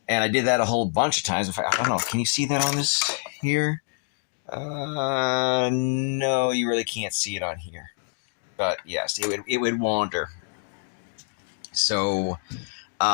And I did that a whole bunch of times. In fact, I don't know. Can you see that on this here? No, you really can't see it on here. But yes, it would wander. So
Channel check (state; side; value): silent; right; 56 dB below the other